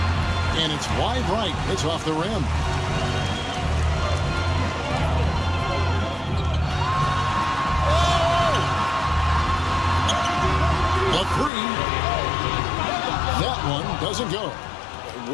And it's wide right. It's off the rim. The 3. That one doesn't go.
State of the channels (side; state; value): right; drops out; at 11.5 s